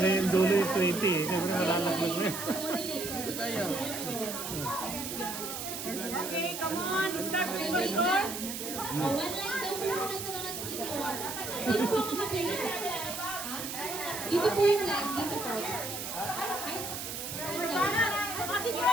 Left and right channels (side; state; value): right; noise; hiss, 6 dB below the sound